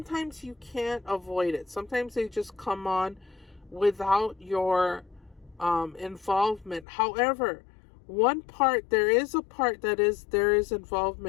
you can't avoid it. Sometimes they just come on without your involvement. However, there is a part that there is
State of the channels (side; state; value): right; drops out; at 6.9 s